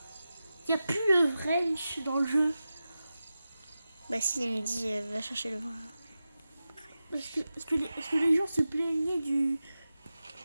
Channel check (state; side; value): inverted; both; correlation -0.93